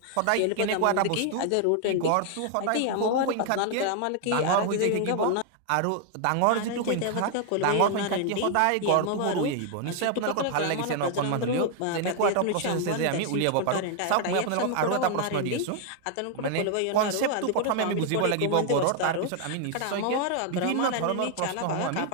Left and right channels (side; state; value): both; different; correlation 0.00